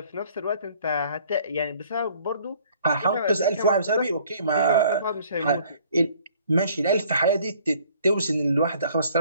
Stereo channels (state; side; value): inverted; both; correlation -0.57